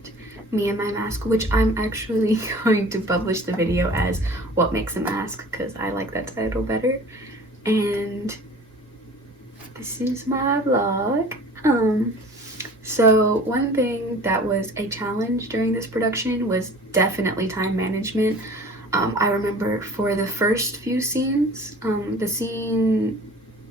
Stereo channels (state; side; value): normal; both; correlation 0.45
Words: Me and My Mask, which I'm actually going to publish the video as What Makes a Mask, because I like that title better. And this is my vlog. So one thing that was a challenge during this production was definitely time management. I remember for the first few scenes,